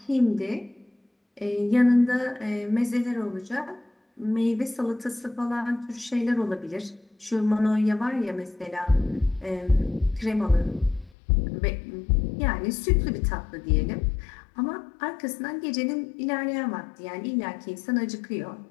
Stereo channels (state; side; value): drops out; right; at 11.1 s